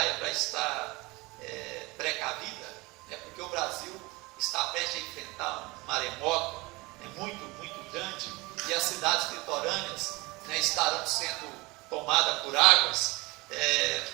para estar precavida, né, porque o Brasil está prestes a enfrentar um maremoto, né, muito, muito grande, e as cidades litorâneas, né, estarão sendo tomadas por águas,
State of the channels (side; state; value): left; quieter; 23.4 dB